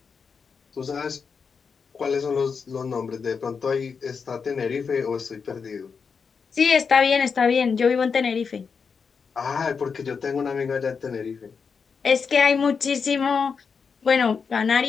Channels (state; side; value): quieter; right; 5.7 dB